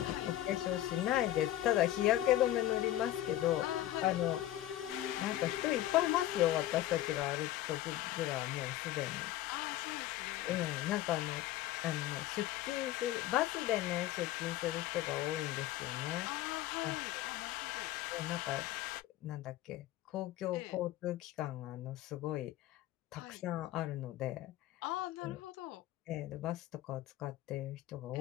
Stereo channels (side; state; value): right; quieter; 14.1 dB